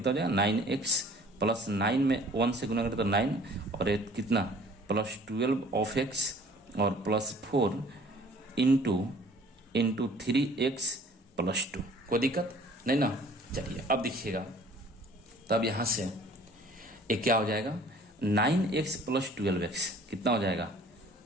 हो जाएगा 9x प्लस 9 में 1 से गुना करें तो 9 और ये कितना प्लस 12 ऑफ x और प्लस 4 इंटू 3x प्लस 2। कोई दिक्कत नहीं ना। चलिए अब देखिएगा तब यहाँ से ये क्या हो जाएगा 9x प्लस 12x कितना हो जाएगा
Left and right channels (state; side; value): normal; both; correlation 0.52